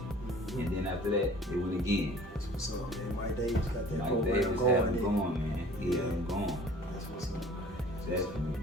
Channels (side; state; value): both; normal; correlation 0.48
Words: And then after that, they went again. That's what's up, man. Mike Davis got that Mike program Davis had going. them going, man. He had them going. That's what's up, man. Definitely,